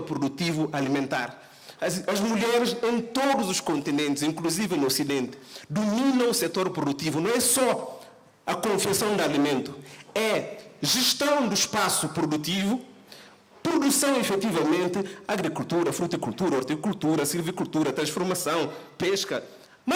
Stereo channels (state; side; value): identical; both; correlation 1.00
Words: produtivo alimentar. As mulheres em todos os continentes, inclusive no Ocidente, dominam o setor produtivo. Não é só a confecção de alimento, é gestão do espaço produtivo, produção efetivamente, agricultura, fruticultura, horticultura, silvicultura, transformação, pesca,